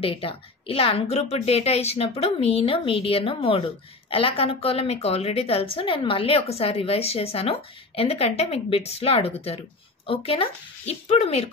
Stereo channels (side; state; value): right; quieter; 3.3 dB